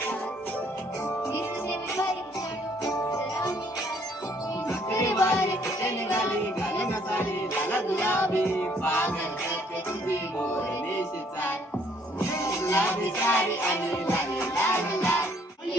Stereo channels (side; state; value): both; normal; correlation 0.64